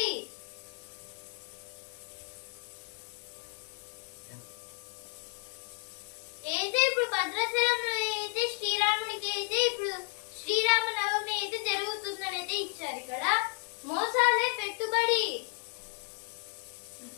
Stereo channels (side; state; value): right; quieter; 39.2 dB